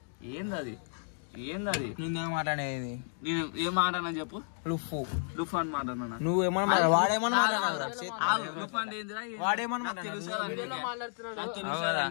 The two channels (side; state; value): right; silent; digital silence